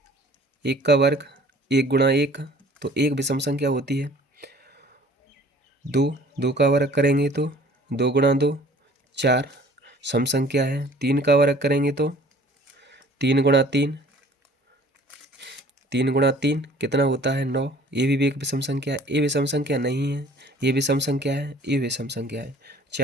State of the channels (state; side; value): normal; both; correlation 0.52